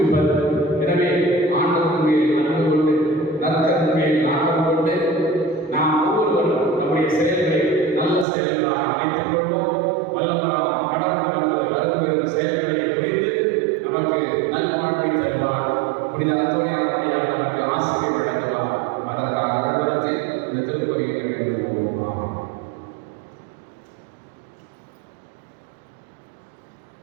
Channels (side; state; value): left; drops out; at 8.2 s